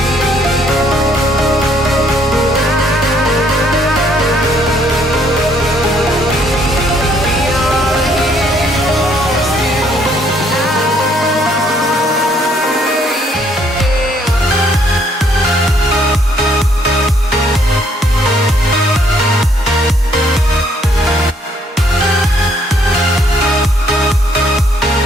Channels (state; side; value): normal; both; correlation 0.67